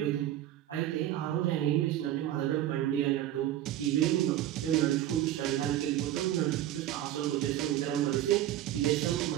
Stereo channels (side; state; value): left; quieter; 12.8 dB